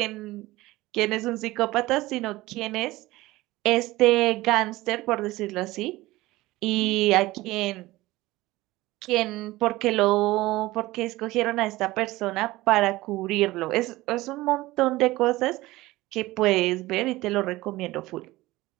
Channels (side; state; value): left; quieter; 18.7 dB